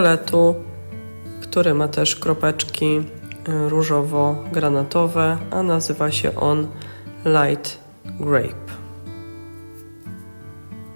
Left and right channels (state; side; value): inverted; both; correlation -1.00